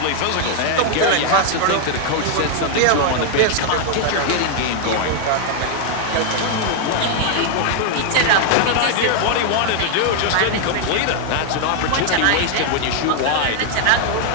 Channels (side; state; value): both; different; correlation 0.00